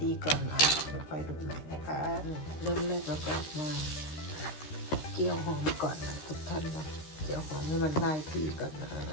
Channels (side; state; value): right; late; 13 ms